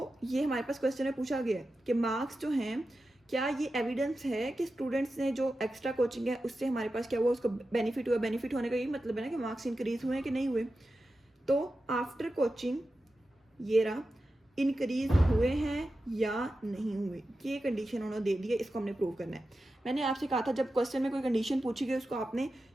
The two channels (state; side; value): normal; both; correlation 0.92